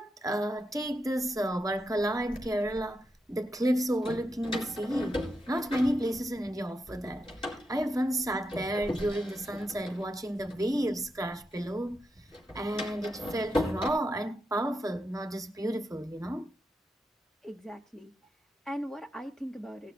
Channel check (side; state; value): both; normal; correlation 0.85